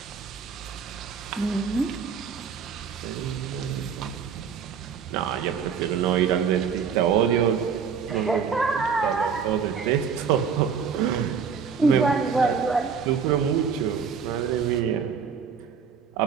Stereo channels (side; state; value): left; quieter; 6.5 dB